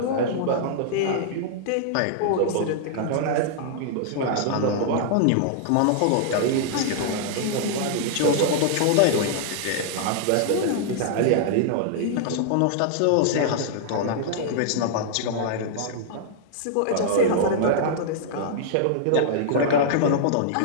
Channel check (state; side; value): different; both; correlation -0.01